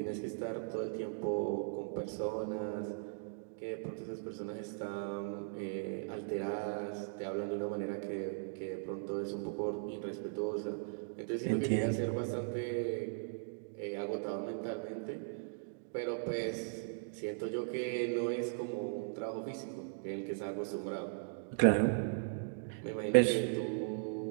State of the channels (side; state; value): left; silent; digital silence